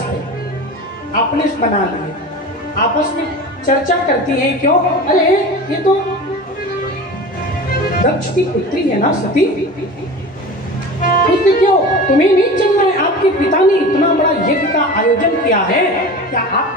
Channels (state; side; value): normal; both; correlation 0.33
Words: पे, अपने से बना लिए। आपस में चर्चा करती हैं, क्यों? अरे ये तो दक्ष की पुत्री है ना सती, पूछते क्यों तुम्हें नहीं चलना है? आपके पिता ने इतना बड़ा यज्ञ का आयोजन किया है, क्या